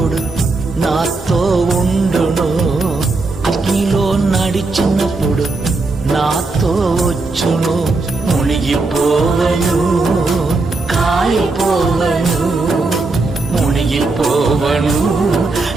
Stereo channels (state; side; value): quieter; left; 3.5 dB